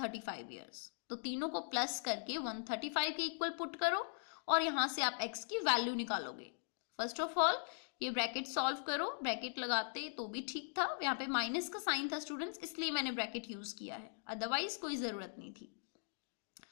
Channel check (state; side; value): silent; right; digital silence